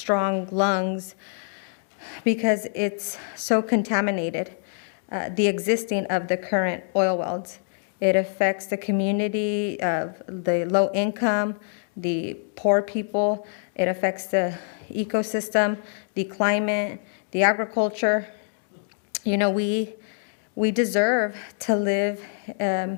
lungs because it's so contaminated, the existing of the current oil wells. It affects the community of the low income, the poor people. It affects the ecosystem, the climate, the agriculture. We deserve to live in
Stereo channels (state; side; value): silent; right; digital silence